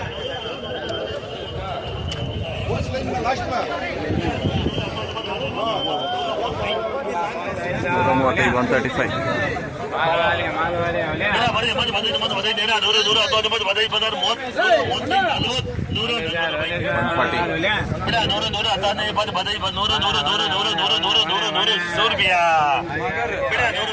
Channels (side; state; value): both; identical; correlation 1.00